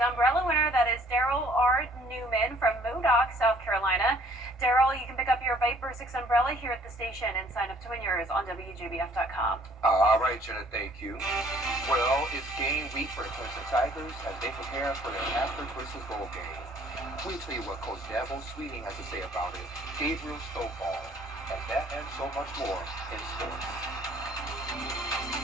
umbrella winner. That is Daryl R. Newman from Modoc, South Carolina. Daryl, you can pick up your Viper 6 umbrella here at the station and sign up to win yours on WJBF.com. All right, Jenna, thank you. Well, it's game week for the Clemson Tigers as they prepare for their Masters versus Bowl game. We'll tell you what Coach Dabo Sweeting has to say about it, Gabriel Stovall, and that and so much more in sports.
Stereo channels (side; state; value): both; normal; correlation 0.59